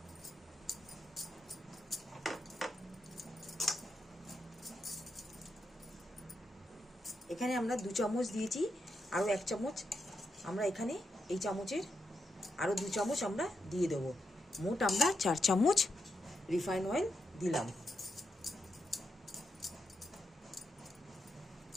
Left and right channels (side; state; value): both; normal; correlation 0.84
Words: এখানে আমরা 2 চামচ দিয়েছি, আরও 1 চামচ আমরা এখানে এই চামচের আরও 2 চামচ আমরা দিয়ে দেবো। মোট আমরা 4 চামচ রিফাইন অয়েল দিলাম।